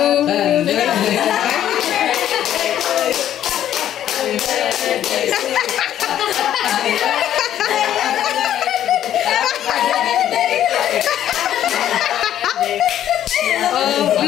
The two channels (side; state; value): right; quieter; 11.2 dB